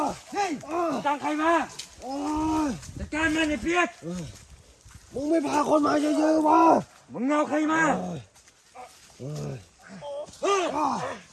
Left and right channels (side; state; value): both; identical; correlation 1.00